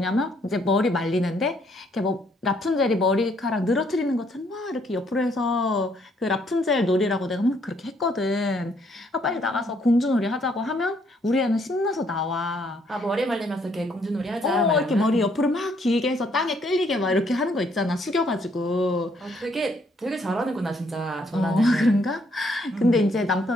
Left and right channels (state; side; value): normal; both; correlation 0.69